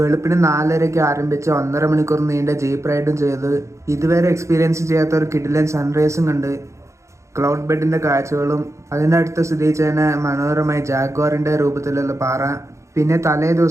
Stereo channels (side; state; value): left; late; 0.14 ms